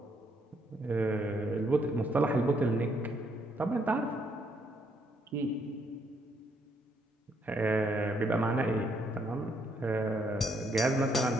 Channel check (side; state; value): both; normal; correlation 0.72